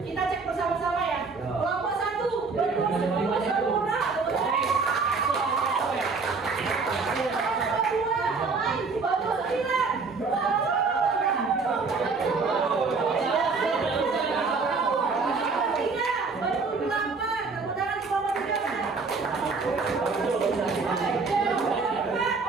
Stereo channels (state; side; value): quieter; left; 4.5 dB